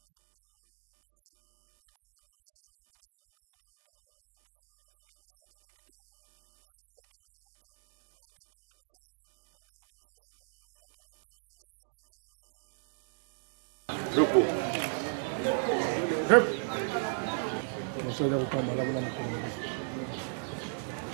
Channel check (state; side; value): silent; left; digital silence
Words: etonda awa puisque baba madi mbezonga pe tozala babalaba lebele lo ya pesa ali kifunda pesa ali kitudi pe ali ezaka madi mbaka raté eza pe tango pesa ali babalaba mso eza kuna érosion kenda tima ya 5 km.